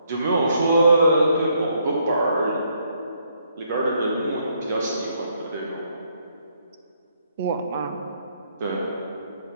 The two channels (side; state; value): both; inverted; correlation -0.72